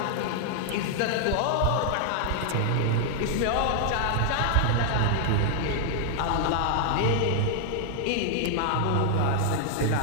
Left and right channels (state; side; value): different; both; correlation 0.00